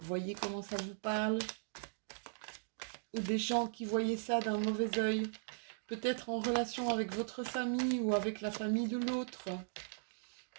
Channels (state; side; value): silent; left; digital silence